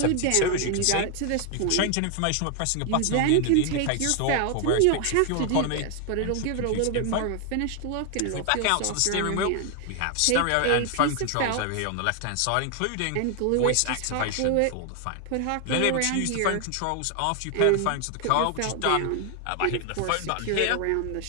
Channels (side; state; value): both; different; correlation 0.00